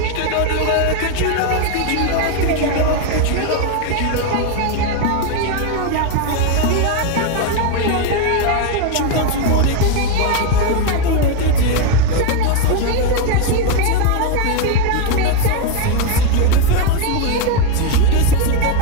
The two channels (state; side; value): different; both; correlation 0.01